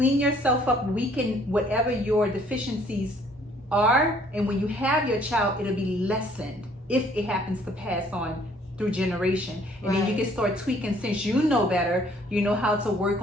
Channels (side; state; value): both; normal; correlation 0.60